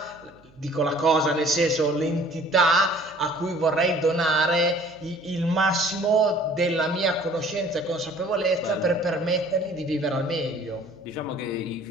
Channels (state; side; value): noise; right; hum, 29 dB below the sound